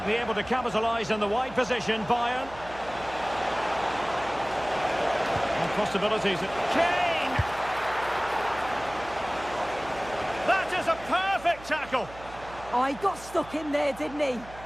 be able to capitalise in the wide position, Bayern. And possibilities. Kane! That is a perfect tackle! Oh, he got stuck in there, didn't he?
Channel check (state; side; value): noise; right; hum, 18 dB below the sound